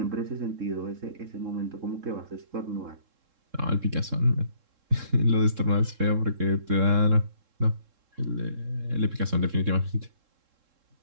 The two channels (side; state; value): left; late; 3.7 ms